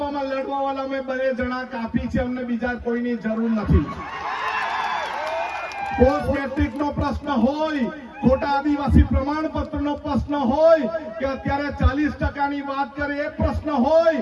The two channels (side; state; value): both; identical; correlation 1.00